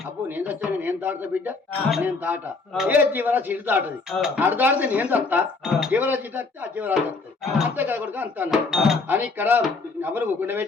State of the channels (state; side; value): quieter; right; 4.0 dB